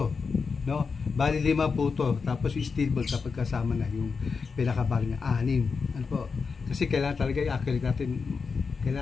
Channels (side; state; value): right; quieter; 5.1 dB